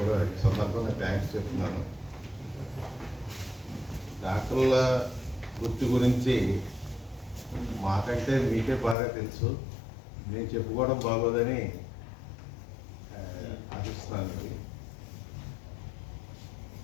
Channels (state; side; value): drops out; right; at 9.0 s